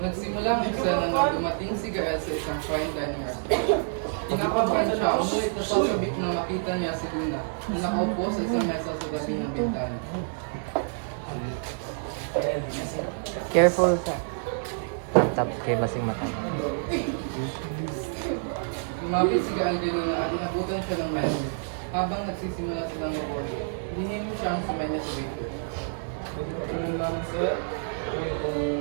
Nagsimula ang eksena na dumating si Gael sa isang fine dining restaurant. Kinakabahan siya, umulit na sasabik na makita niya si Luna na nakaupo sa isang mesa sa tabi ng bintana. Careful ka. Tap kay basing mata. Lumapit si Gael kay Luna at inabutan siya ng mesa. Habang nagsisimula silang mabordo, hinihim siya ang sumay niya sa waiter.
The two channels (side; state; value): left; silent; 60 dB below the other